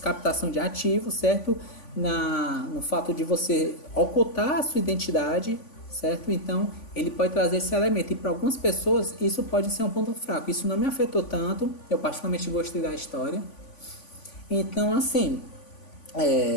de ativos, certo? No fato de você ocultar a sua identidade, certo? Então, ele pode trazer esse elemento. E para algumas pessoas, isso pode ser um ponto fraco. Isso não me afetou tanto. Eu particularmente gostei da história. Então, assim,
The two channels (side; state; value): right; late; 3.5 ms